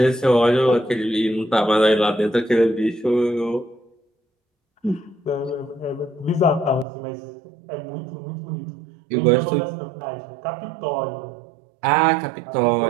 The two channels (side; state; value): left; drops out; at 6.9 s